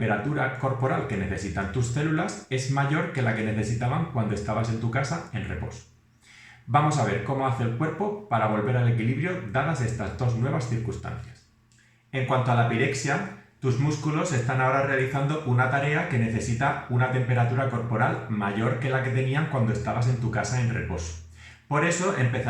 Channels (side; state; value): both; identical; correlation 1.00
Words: corporal que necesitan tus células es mayor que la que necesitaban cuando estabas en tu casa en reposo. Vamos a ver cómo hace el cuerpo para volver al equilibrio dadas estas dos nuevas circunstancias. En cuanto a la pirexia, tus músculos están ahora realizando una tarea que necesita una temperatura corporal mayor que la que tenían cuando estabas en tu casa en reposo. Por eso